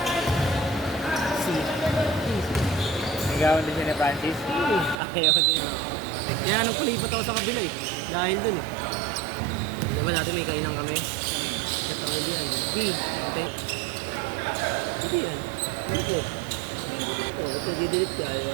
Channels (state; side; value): drops out; left; at 5.0 s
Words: Si. Nagawan din siya ni Francis. Ayaw din. Kaya nung kulipat ako sa kabila eh. Dahil dun eh. Diba natin may kainan kami? At ang ulit yan. Ate. Hindi yan. Ano ko? Oo, ito didelete ka, di